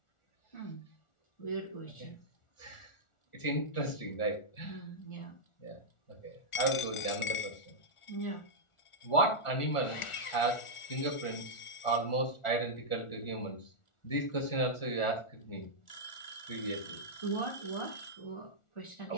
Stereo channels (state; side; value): late; right; 1.4 ms